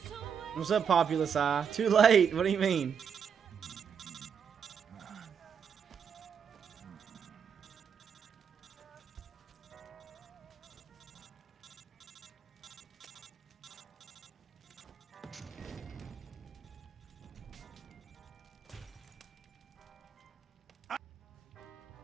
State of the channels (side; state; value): left; quieter; 7.3 dB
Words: What's up, Populous Eye? Too late. What do you mean?